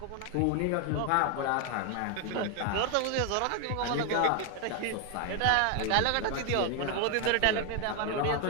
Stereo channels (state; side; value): different; both; correlation 0.01